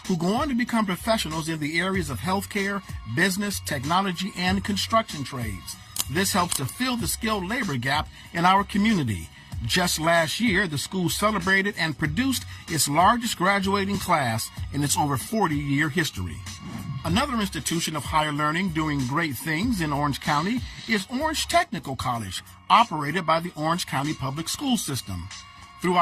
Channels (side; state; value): both; identical; correlation 1.00